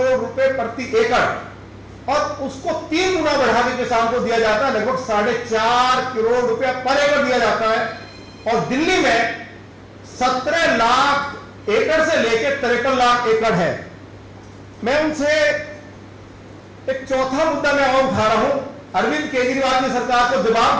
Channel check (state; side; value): identical; both; correlation 1.00